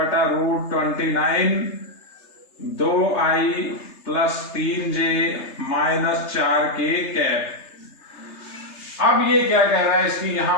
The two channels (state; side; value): late; right; 3.3 ms